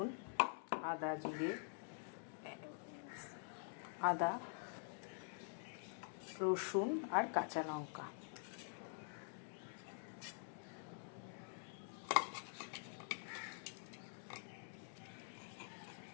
আদা, রসুন আর কাঁচা লঙ্কা।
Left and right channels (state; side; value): silent; right; digital silence